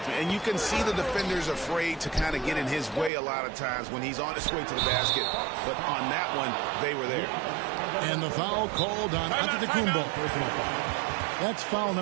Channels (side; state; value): left; drops out; at 3.1 s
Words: And you can see the defenders afraid to kind of get in his way a lot of times when he's on his way to the basket. But on that one, they were there. And the foul called on Antetokounmpo. That's foul